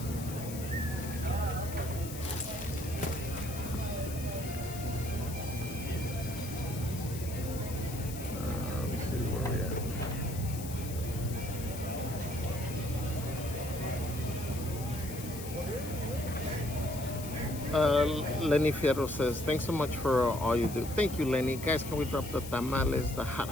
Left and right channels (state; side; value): noise; left; hiss, 12 dB below the sound